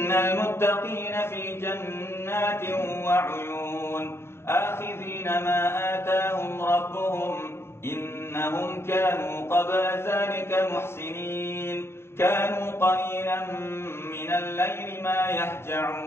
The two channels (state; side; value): late; right; 0.12 ms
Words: المتقين في جنات وعيون آخذين ما آتاهم ربهم إنهم كانوا قبل ذلك محسنين كانوا قليلا من الليل ما